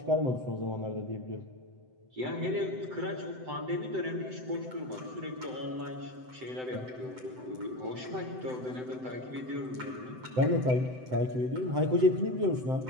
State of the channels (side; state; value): left; late; 7.8 ms